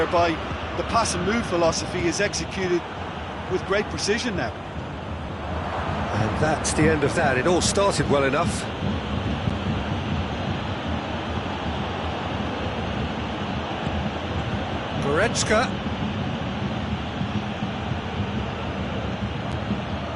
the pass and move philosophy is executed with great precision now. And that's the end of that. It all started well enough. Goretzka.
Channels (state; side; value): identical; both; correlation 1.00